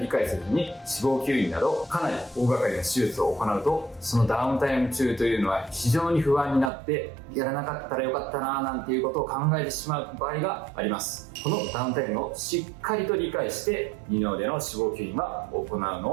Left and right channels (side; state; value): left; drops out; at 6.7 s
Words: 解せずに脂肪吸引などかなり大掛かりな手術を行うとそのダウンタイム中というのは非常に不安になってやらなかったらよかったななんていうことを考えてしまう場合があります。このダウンタイムをしっかりと理解して二の腕の脂肪吸引は行うの